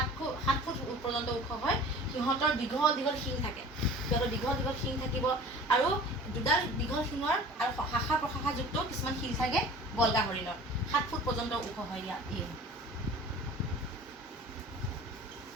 ফুট পৰ্যন্ত ওখ হয়। সিহঁতৰ দীঘল দীঘল শিং থাকে, সিহঁতৰ দীঘল দীঘল শিং থাকিব আৰু দুডাল দীঘল শিঙৰ আৰু শাখা প্ৰশাখাযুক্ত কিছুমান শিল থাকে বল্গা হৰিণৰ। 7 ফুট পৰ্যন্ত ওখ হয় ইয়াক।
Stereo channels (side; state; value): both; normal; correlation 0.43